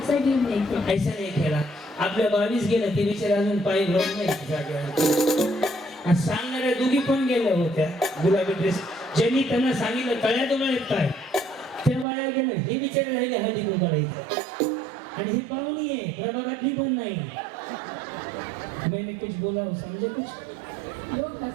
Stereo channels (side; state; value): left; drops out; at 12.1 s